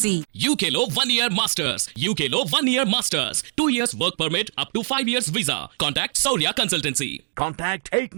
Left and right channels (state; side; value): silent; left; digital silence